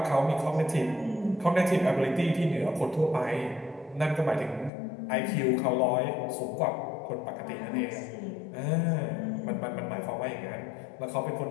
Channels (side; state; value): right; drops out; at 4.7 s